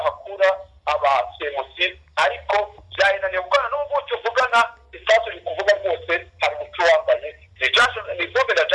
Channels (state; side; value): identical; both; correlation 1.00